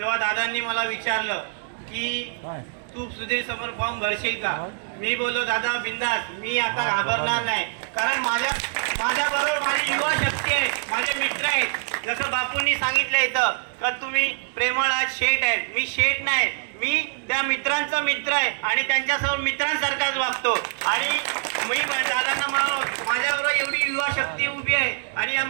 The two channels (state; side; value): silent; left; digital silence